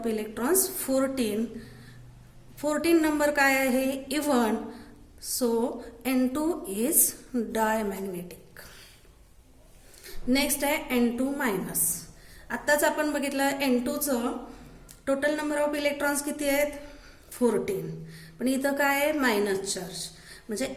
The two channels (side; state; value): both; identical; correlation 1.00